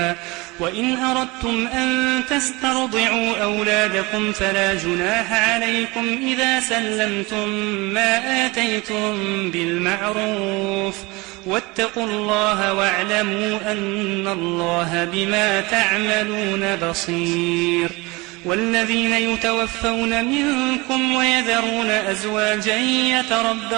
وإن أردتم أن تسترضعوا أولادكم فلا جناح عليكم إذا سلمتم ما آتيتم بالمعروف واتقوا الله واعلموا أن الله بما تعملون بصير. والذين يتوفون منكم ويذرون أزواجا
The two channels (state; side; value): quieter; left; 24.1 dB